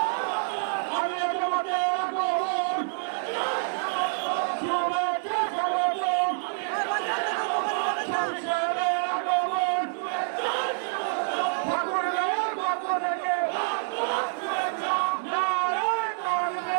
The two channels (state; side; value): silent; left; 60 dB below the other